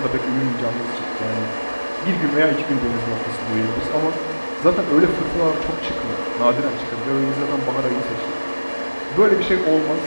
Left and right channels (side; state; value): both; inverted; correlation -1.00